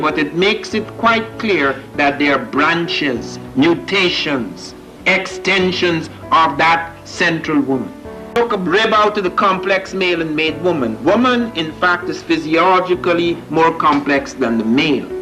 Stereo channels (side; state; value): both; identical; correlation 1.00